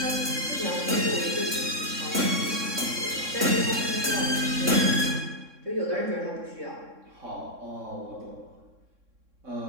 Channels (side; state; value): left; late; 3.6 ms